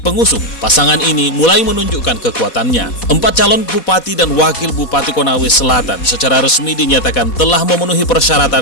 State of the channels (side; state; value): right; late; 4.1 ms